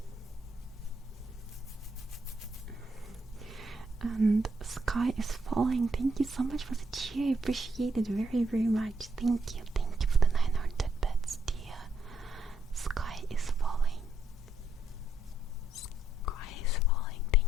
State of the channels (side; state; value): both; normal; correlation 0.75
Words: And Sky is Falling, thank you so much for the cheer. I appreciate it very, very much. Thank you for the 900 bits, dear. Sky is falling. Sky is falling.